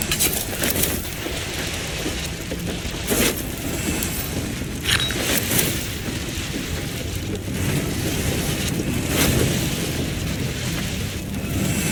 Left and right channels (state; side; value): identical; both; correlation 1.00